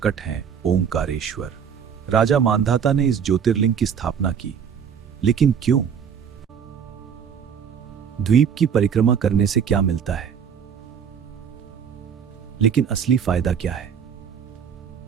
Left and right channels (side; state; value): left; quieter; 7.5 dB